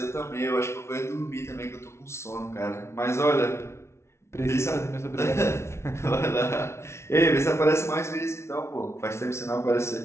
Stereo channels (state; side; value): late; right; 0.13 ms